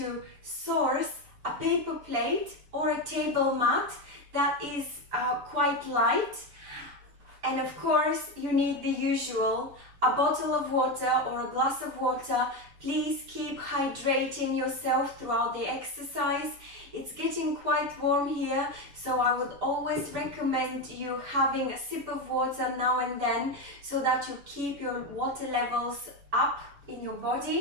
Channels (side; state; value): left; late; 7.0 ms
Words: source a paper plate or a table mat that is quite light. And of course, you need the usual, a bottle of water or a glass of water. Please keep hydrating yourself throughout the exercise. It's getting quite warm here, so I would always recommend you having a sip of water now and then so that you keep your water levels up in your